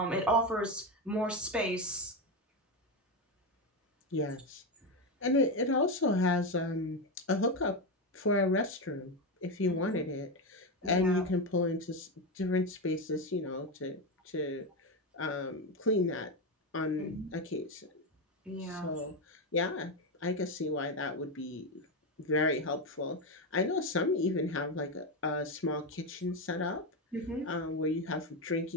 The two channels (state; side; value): normal; both; correlation 0.12